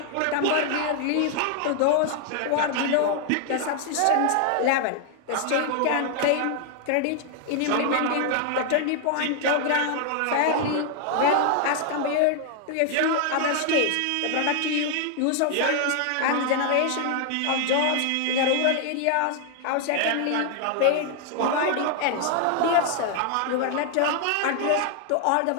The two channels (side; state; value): both; different; correlation 0.00